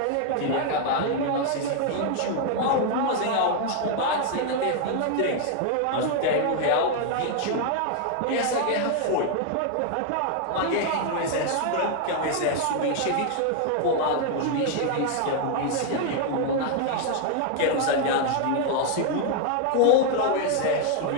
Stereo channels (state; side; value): different; both; correlation 0.00